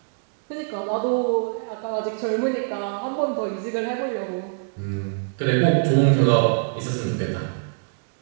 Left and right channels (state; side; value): silent; left; digital silence